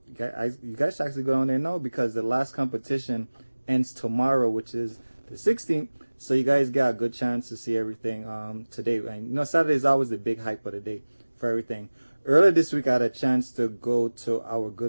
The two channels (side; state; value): both; inverted; correlation -1.00